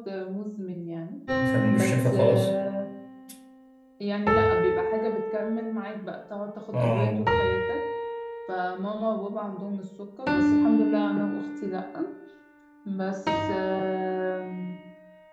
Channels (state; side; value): identical; both; correlation 1.00